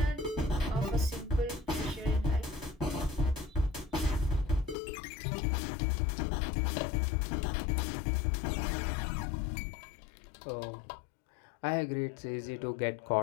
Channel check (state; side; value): drops out; right; at 4.8 s